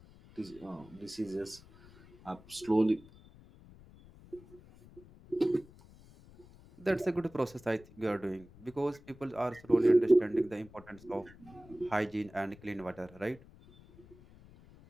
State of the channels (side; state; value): left; noise; rumble, 22 dB below the sound